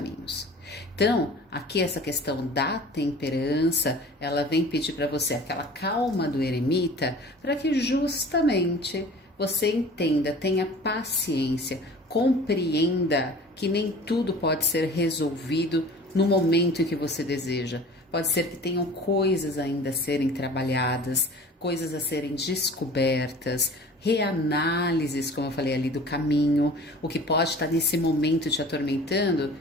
Então, aqui essa questão da temperança, ela vem pedir para você aquela calma do eremita, para que justamente você entenda, tenha paciência, compreenda que nem tudo pode ser resolvido no momento em que você deseja. Pode ser que tenham coisas ainda a serem trabalhadas, coisas a serem descobertas, reanálises, como eu falei ali, do caminho. O que pode estar nesse momento te atormentando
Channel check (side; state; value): both; normal; correlation 0.43